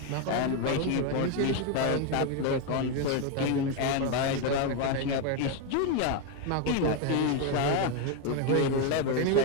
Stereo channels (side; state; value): both; different; correlation 0.01